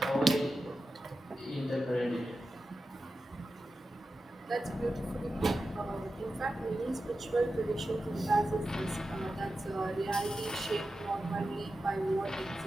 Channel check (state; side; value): normal; both; correlation 0.92